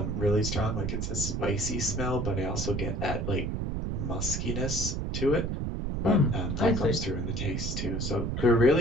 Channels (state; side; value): noise; right; rumble, 2 dB below the sound